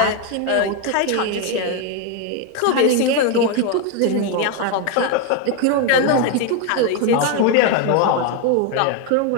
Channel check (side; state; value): both; different; correlation 0.01